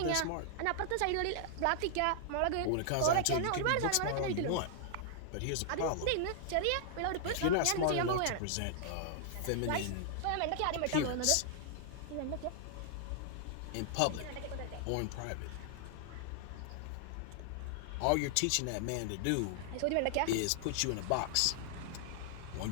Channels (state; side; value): different; both; correlation -0.01